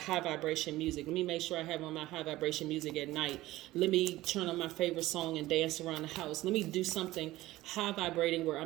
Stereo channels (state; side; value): quieter; left; 17.0 dB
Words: vibration music. Let me make sure I have on my high vibration music at night. Let me turn on my favorite song and dance around the house. Let me do something high vibrating where